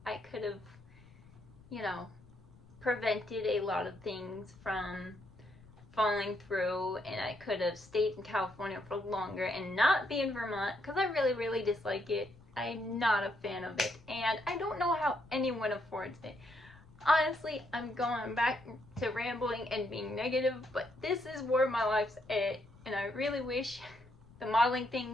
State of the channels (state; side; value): noise; left; rumble, 23 dB below the sound